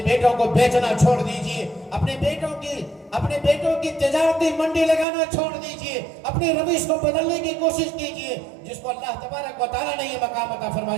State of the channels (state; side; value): drops out; left; at 5.1 s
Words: بیٹوں کو بیچنا چھوڑ دیجئے، اپنے بیٹوں کی تجارتی منڈی لگانا چھوڑ دیجئے، اپنے روش کو بدلنے کی کوشش کیجئے، جس کو اللہ تبارک و تعالیٰ نے یہ مقام عطا